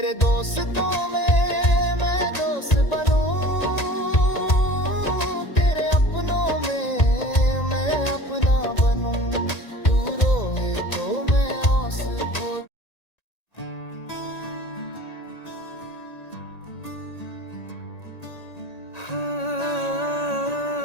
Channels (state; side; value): late; right; 1.9 ms